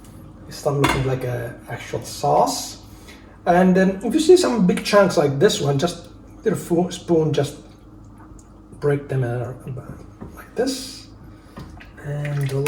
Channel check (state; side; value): identical; both; correlation 1.00